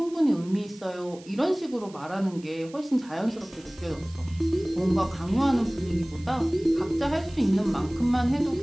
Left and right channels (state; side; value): noise; right; hiss, 23 dB below the sound